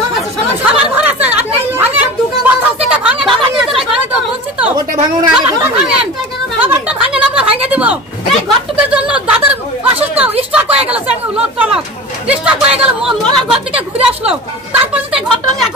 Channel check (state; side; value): normal; both; correlation 0.33